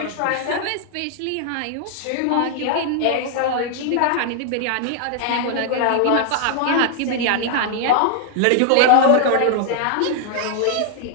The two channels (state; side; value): different; both; correlation 0.00